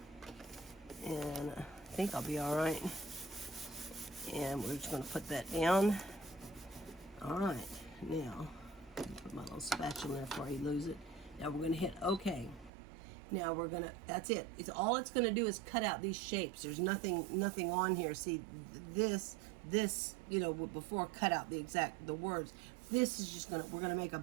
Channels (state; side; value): drops out; left; at 12.7 s